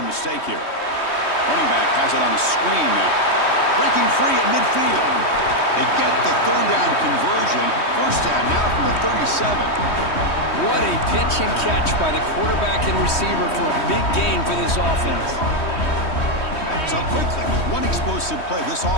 a mistake here. Running back has it on a screen now. Breaking free at midfield. They get the 3rd down conversion. First down now from the 37. What a pitch and catch by the quarterback and receiver for a big gain for this offense. So quickly, with one explosive play, this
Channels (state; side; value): late; right; 3.1 ms